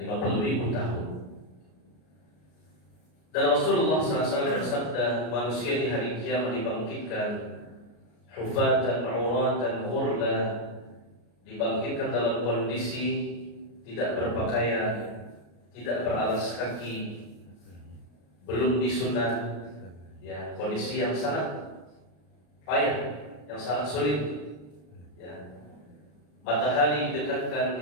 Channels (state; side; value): late; right; 33 ms